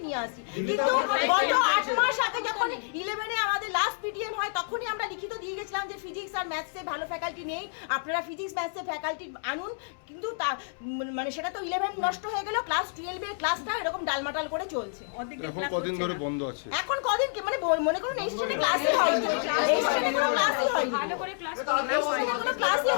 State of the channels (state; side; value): silent; right; 59 dB below the other